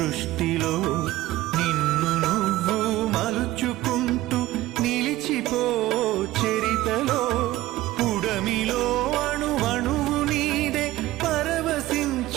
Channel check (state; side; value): quieter; left; 16.4 dB